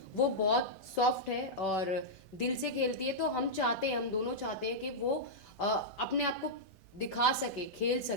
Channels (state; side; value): normal; both; correlation -0.08